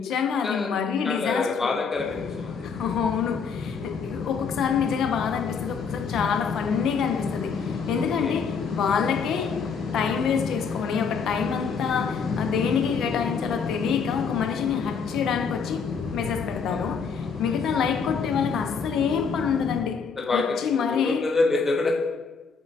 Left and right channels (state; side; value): quieter; right; 5.7 dB